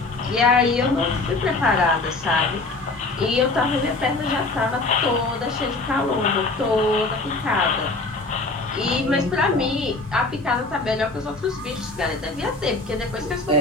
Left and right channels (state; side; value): quieter; right; 3.3 dB